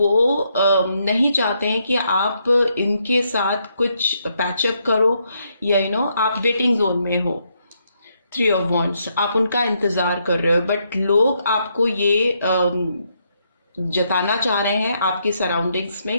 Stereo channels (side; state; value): both; inverted; correlation -0.77